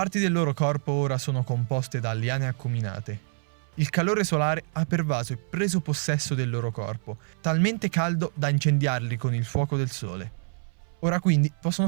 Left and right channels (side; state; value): left; silent; 59 dB below the other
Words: del loro corpo ora sono composte da liane acuminate. Il calore solare ha pervaso e preso possesso del loro corpo, talmente caldo da incendiarli con il fuoco del sole. Ora quindi possono